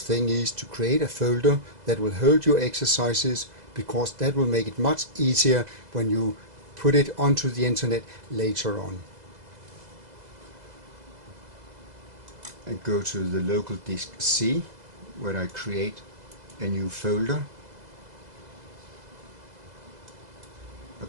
is to create a folder that will hold your exercises, because that will make it much easier when you put it onto the internet later on. And go to the local disk C, where I create a new folder. I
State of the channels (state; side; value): late; left; 2.0 ms